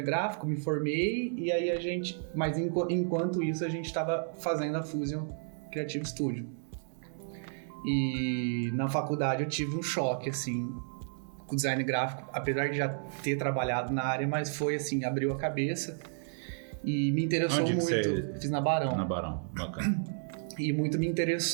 gráfico, me formei, e aí mas enquanto isso a gente estava fazendo a Fusion Creative Studio. E na faculdade eu tive um choque, assim, com design gráfico, apesar de já ter trabalhado na área, mas foi assim, abriu a cabeça e me interessou muito. Fiz na Barão. Na Barão, bacana. E muito me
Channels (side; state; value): left; silent; digital silence